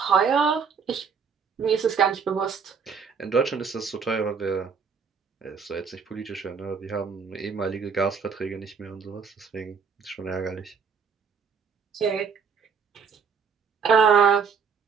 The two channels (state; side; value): quieter; left; 6.1 dB